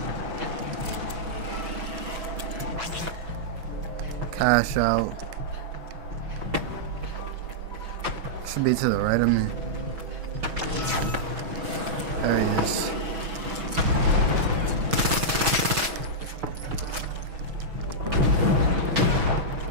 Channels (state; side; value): late; left; 6.1 ms